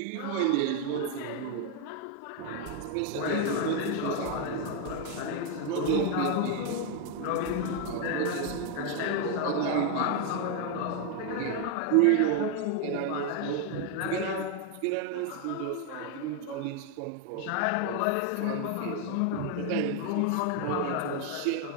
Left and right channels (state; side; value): different; both; correlation 0.01